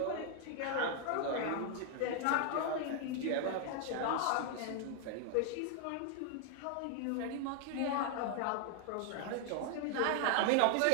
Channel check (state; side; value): different; both; correlation 0.00